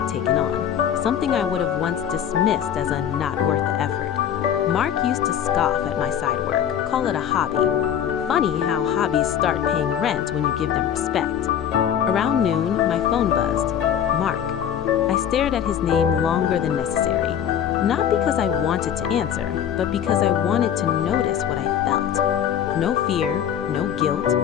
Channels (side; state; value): right; quieter; 9.3 dB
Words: taken on, something I would have once dismissed as a not worth the effort. Mark used to scoff at my side work, call it a hobby. Funny how hobbies start paying rent when you give them respect. Around noon, my phone buzzed. Mark. I stared at his name longer than necessary, not because I wanted to answer, but because I wanted to notice what I felt. No fear, no guilt,